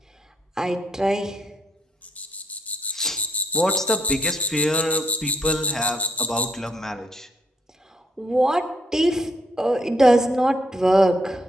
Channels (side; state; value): both; normal; correlation 0.72